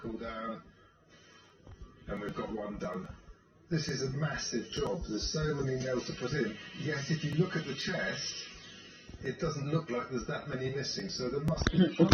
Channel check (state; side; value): identical; both; correlation 1.00